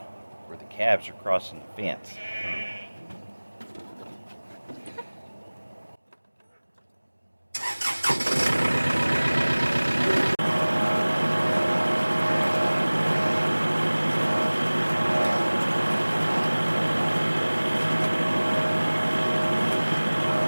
where the calves are crossing the fence.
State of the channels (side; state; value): both; inverted; correlation -1.00